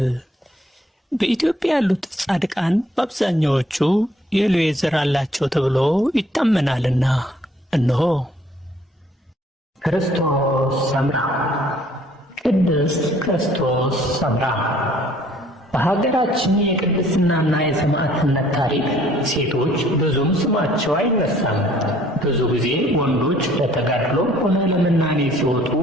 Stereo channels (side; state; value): both; normal; correlation 0.60